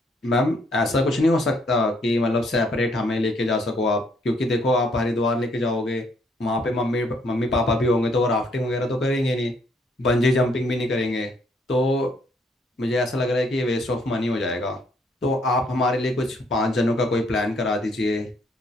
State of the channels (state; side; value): normal; both; correlation 0.68